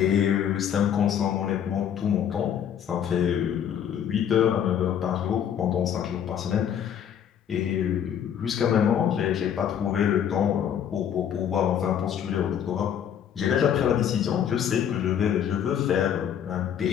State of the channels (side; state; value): right; quieter; 9.1 dB